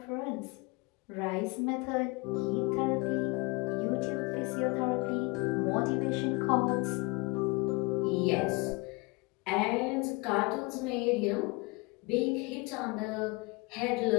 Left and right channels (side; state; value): right; quieter; 27.3 dB